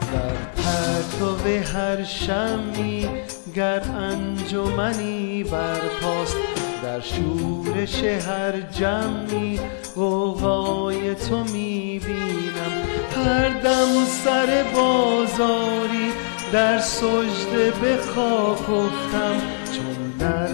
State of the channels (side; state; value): right; silent; digital silence